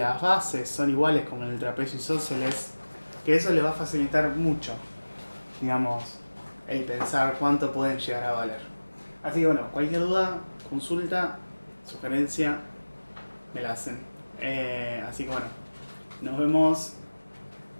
bases son iguales como en el trapecio isósceles. Que eso les va a facilitar mucho, digamos, el pensar cuánto pueden llegar a valer. Así que bueno, cualquier duda, consulta, sugerencia, me la hacen. Así que bueno, nos vemos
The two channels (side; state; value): both; inverted; correlation -1.00